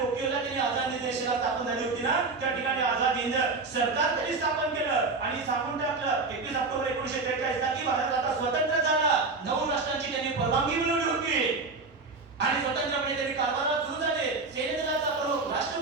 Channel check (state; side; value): quieter; left; 3.9 dB